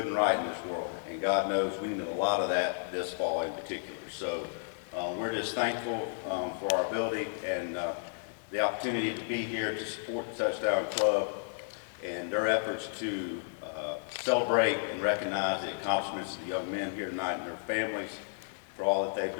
and right in this world, and God knows we need a lot of that this fall in particular. So we're just thankful for our ability and the opportunity to be here to support the Touchdown Club and their efforts to celebrate and recognize the accomplishments of the young men here tonight and their families for all that they've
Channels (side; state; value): right; silent; digital silence